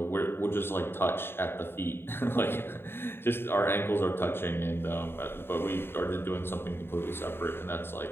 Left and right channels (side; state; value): right; late; 0.11 ms